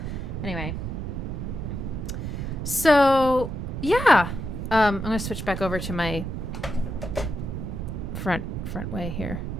Anyway. So yeah. I'm going to switch back over to my front way here.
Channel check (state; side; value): noise; right; rumble, 4 dB below the sound